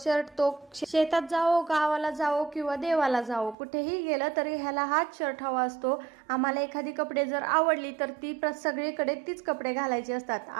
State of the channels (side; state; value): left; drops out; at 3.6 s